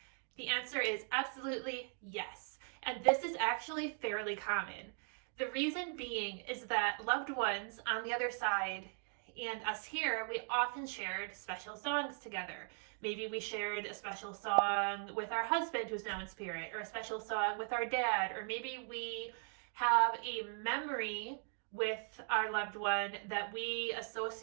The answer is absolutely yes. And this is actually fairly common. The reason being is that loved ones on the other side and us here, we often shared special songs together. Maybe we shared a special song with our husband who's now in spirit, or a special song with our dad, or maybe we have a memory with our loved one that we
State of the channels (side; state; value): left; silent; 52 dB below the other